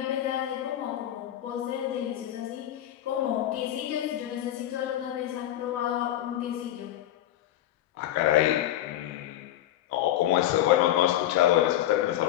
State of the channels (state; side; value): quieter; right; 12.9 dB